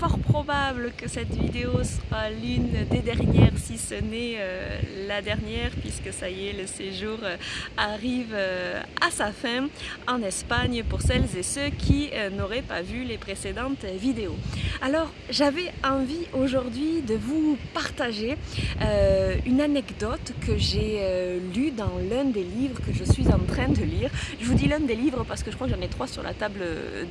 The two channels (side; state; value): both; identical; correlation 1.00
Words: probable que cette vidéo soit l'une des dernières, si ce n'est la dernière, puisque ça y est, le séjour arrive à sa fin en Espagne pour celles et ceux qui n'auraient pas vu les précédentes vidéos. Alors j'avais envie aujourd'hui de vous partager une anecdote que j'ai lue dans l'un des livres que je suis en train de lire. Je vous dis l'un des livres parce que je crois que j'en ai 3 sur la table